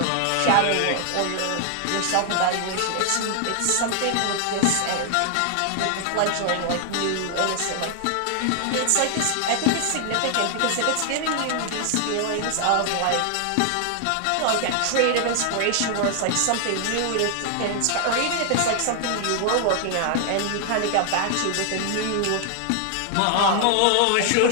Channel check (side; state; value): both; different; correlation 0.00